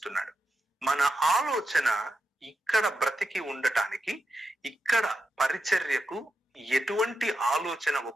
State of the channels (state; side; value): normal; both; correlation 0.87